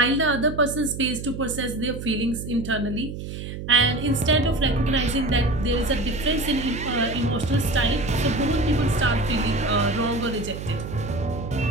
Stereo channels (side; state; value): right; noise; hum, 8 dB below the sound